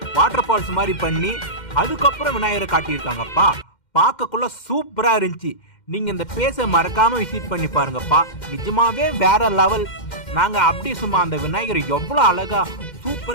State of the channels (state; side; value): late; right; 2.1 ms